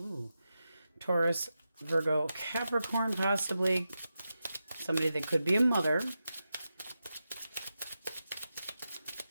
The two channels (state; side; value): inverted; both; correlation -0.90